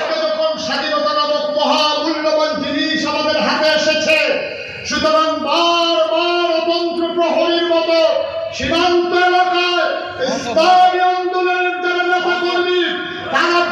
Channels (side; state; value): both; identical; correlation 1.00